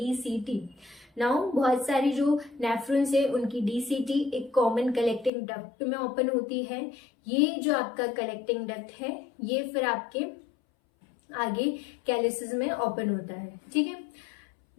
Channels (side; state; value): right; drops out; at 5.3 s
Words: नाउ बहुत सारी जो नेफ्रॉन्स है उनकी डीसीटी एक कॉमन कलेक्टिंग डक्ट में ओपन होती है। ये जो आपका कलेक्टिंग डक्ट है ये फिर आपके आगे कैलिसेस में ओपन होता है। ठीक है,